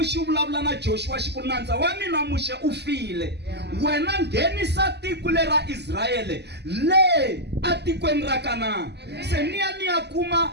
xi vulavula na Joshua xi ku nandza wa mina muxe u file, wena nghenisa tiko lera Israyele le a tikweni ra Kanani. Se niya kuma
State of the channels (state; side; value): late; left; 0.49 ms